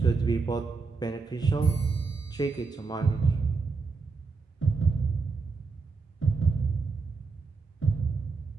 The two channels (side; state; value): left; quieter; 4.4 dB